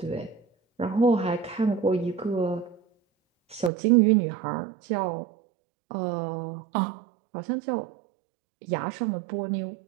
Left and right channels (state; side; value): drops out; left; at 3.7 s